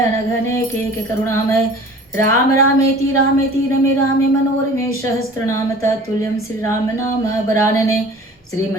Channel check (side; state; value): both; normal; correlation 0.44